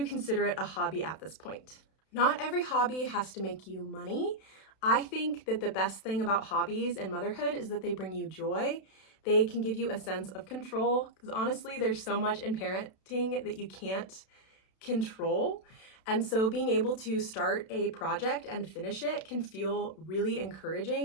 consider it a hobby at this point. Not every hobby has to make you money. I think that the best thing about hobbies and motherhood is that they bring you joy. They can give you a sense of control, because honestly, there's so much in parenting that you can't control. And so being able to start a project and finish it can feel really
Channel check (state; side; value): late; right; 32 ms